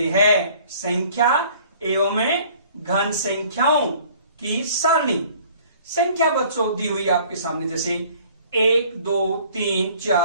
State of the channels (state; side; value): inverted; both; correlation -0.53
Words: है संख्या एवं घन संख्याओं की सारणी। संख्या बच्चों दी हुई आपके सामने, जैसे 1 2 3